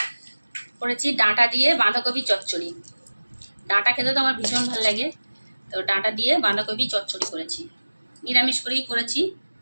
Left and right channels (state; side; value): inverted; both; correlation -1.00